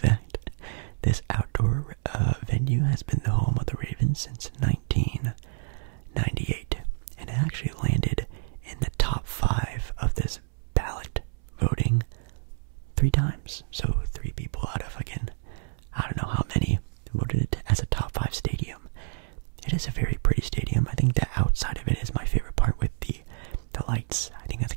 This outdoor venue has been the home of the Ravens since 1998, and it actually landed in the top 5 of this ballot voting 3 times. So 3 people out of, again, I don't know how many voted it as a top 5 stadium. It is a very pretty stadium. I think the outside of it is my favorite part with the lights. I think that's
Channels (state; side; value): silent; left; 59 dB below the other